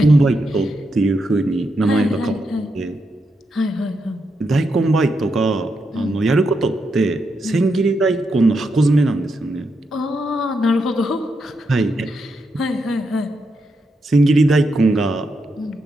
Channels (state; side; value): normal; both; correlation 0.83